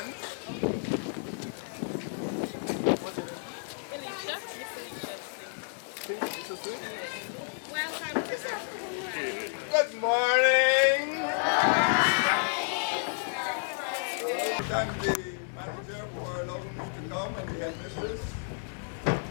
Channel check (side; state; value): right; silent; 57 dB below the other